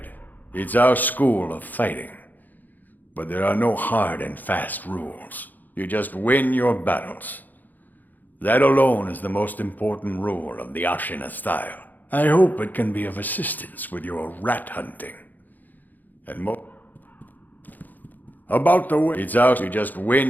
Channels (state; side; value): late; right; 0.084 ms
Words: It's our school of fighting. But there are no hard and fast rules. You just win your battles. That alone is the most important rule of the Ashina style. I hope it can be of assistance with your rat hunting. And about the way it's out, you just